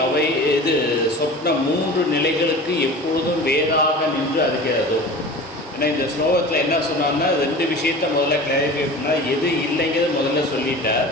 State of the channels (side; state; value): both; normal; correlation 0.36